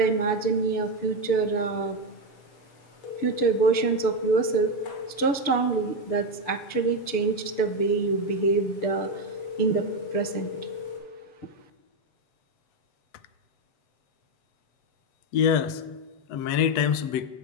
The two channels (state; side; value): late; right; 6.9 ms